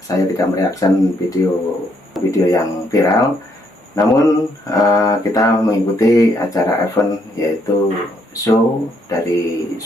Saya tidak mereaksi video yang viral, namun kita mengikuti acara event yaitu show dari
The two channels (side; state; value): both; normal; correlation 0.72